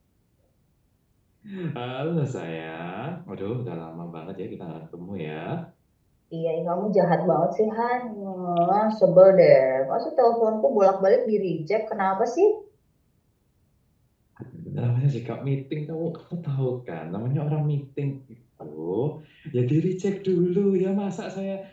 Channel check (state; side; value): identical; both; correlation 1.00